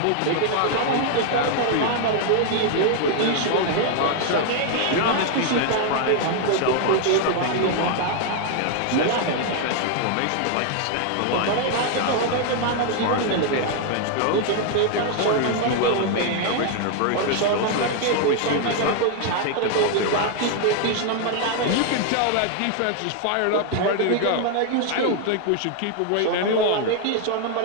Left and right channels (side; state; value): both; different; correlation 0.00